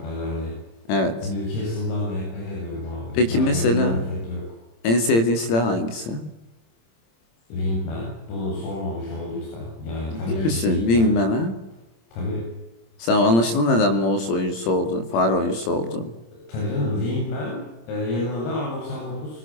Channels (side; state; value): right; late; 26 ms